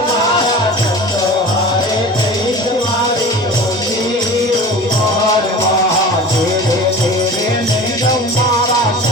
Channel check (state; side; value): normal; both; correlation 0.36